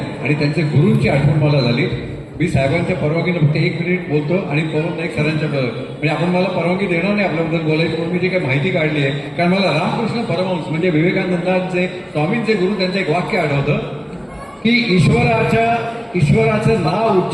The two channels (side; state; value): both; identical; correlation 1.00